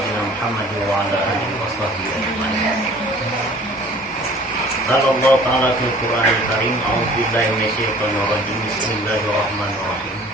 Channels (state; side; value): normal; both; correlation 0.50